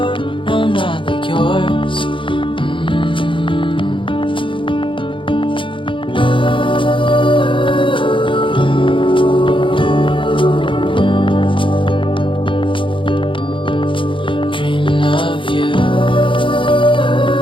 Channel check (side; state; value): right; late; 0.25 ms